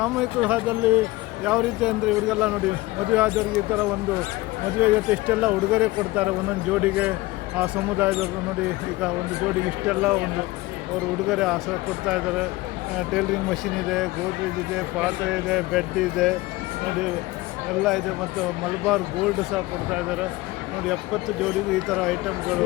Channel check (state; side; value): quieter; right; 19.9 dB